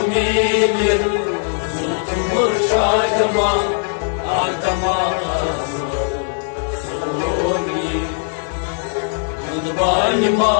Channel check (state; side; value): silent; right; 56 dB below the other